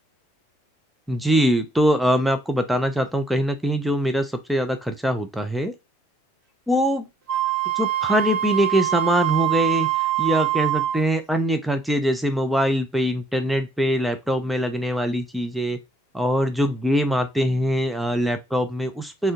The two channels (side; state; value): both; normal; correlation 0.66